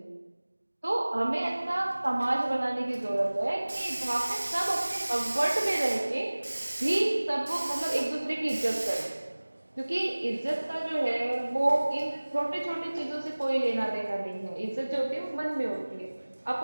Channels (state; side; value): inverted; both; correlation -1.00